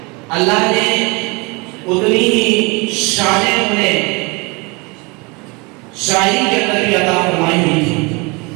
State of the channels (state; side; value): quieter; left; 28.0 dB